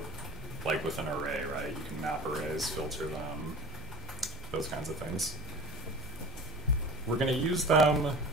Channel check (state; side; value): normal; both; correlation 0.36